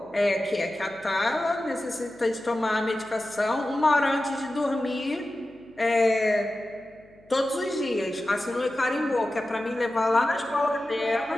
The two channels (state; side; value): noise; left; hum, 28 dB below the sound